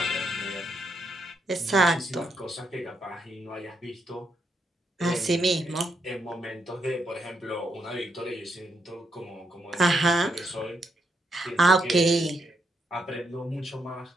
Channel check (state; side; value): normal; both; correlation 0.79